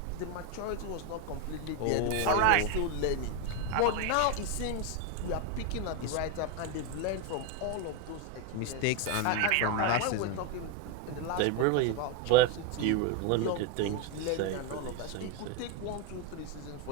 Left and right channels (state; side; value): different; both; correlation 0.02